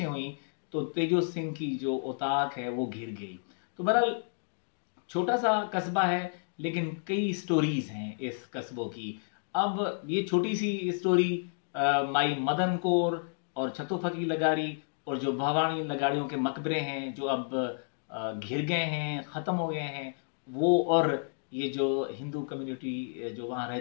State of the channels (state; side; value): silent; right; digital silence